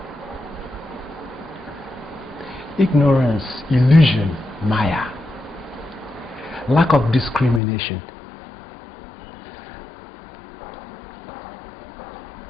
Ignorance, illusion, Maya, lack of discrimination.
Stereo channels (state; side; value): drops out; right; at 7.6 s